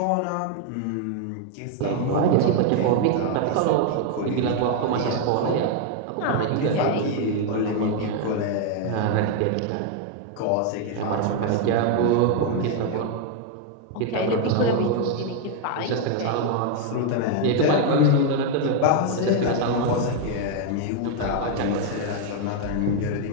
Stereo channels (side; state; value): both; different; correlation 0.00